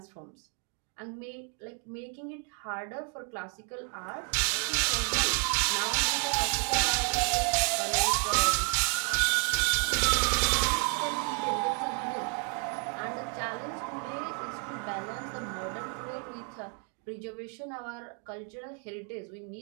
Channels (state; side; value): quieter; left; 35.3 dB